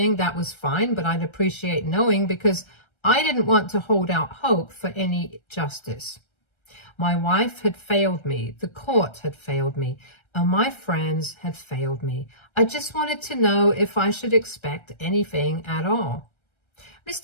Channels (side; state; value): right; late; 1.3 ms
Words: that was fine, but I'd appreciate knowing because I didn't want to hold out hope for any justice. My wife had failed me, the court had failed me, and my friends had failed me. I just wanted to know if I should expect anything at all.